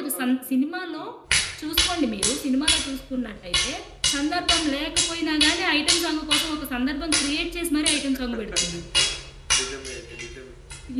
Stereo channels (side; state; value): both; identical; correlation 1.00